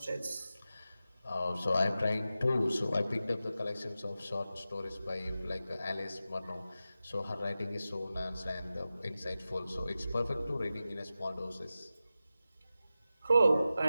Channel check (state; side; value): inverted; both; correlation -0.93